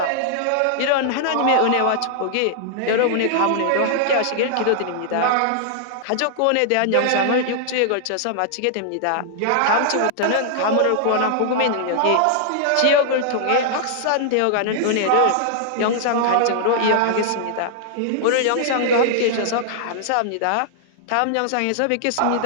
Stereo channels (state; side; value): different; both; correlation -0.01